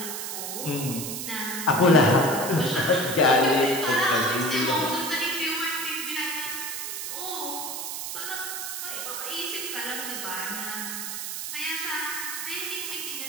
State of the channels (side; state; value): right; noise; hiss, 5 dB below the sound